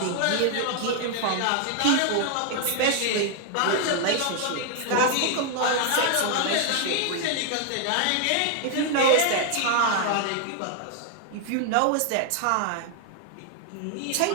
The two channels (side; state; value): both; different; correlation 0.00